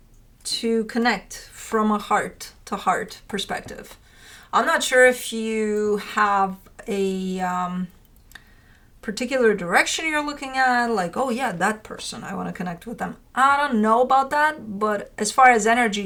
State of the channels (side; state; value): both; identical; correlation 1.00